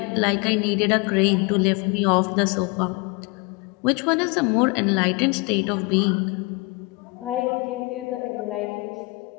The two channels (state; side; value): quieter; right; 26.7 dB